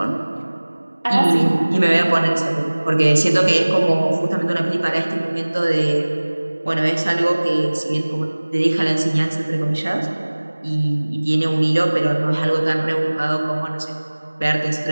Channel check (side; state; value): both; inverted; correlation -1.00